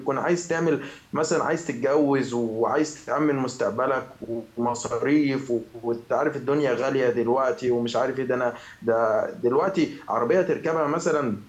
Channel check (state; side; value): identical; both; correlation 1.00